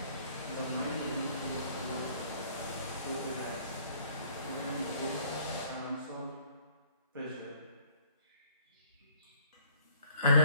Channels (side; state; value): both; inverted; correlation -0.61